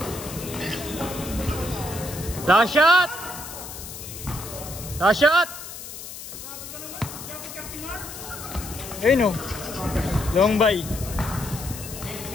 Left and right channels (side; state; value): left; noise; hiss, 11 dB below the sound